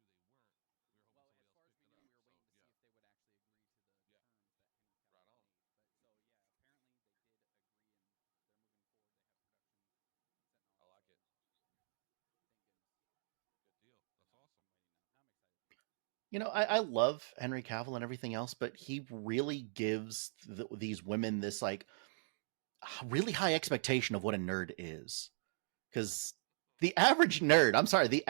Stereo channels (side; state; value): left; silent; digital silence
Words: they weren't. We were hoping well, somebody as else far as picked we it knew, up. we were So, waiting to see if they would actually agree to the terms that Henry Cavill made. But so yeah, apparently they did agree, and they're moving forward. They have production set and all that. I like it. Thank goodness. Good deal. That's awesome. I'm waiting now. Now I'm excited. You know, I love Henry Cavill and everything else, but he really gives these women this like really high expectation of what a nerd is. Because the average nerd, I'm sorry, the